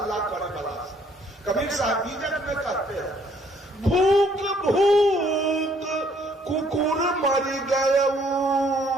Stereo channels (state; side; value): normal; both; correlation 0.64